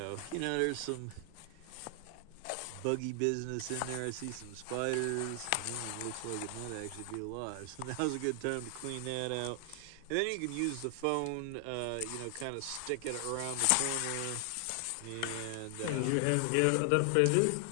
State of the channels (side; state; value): both; different; correlation 0.00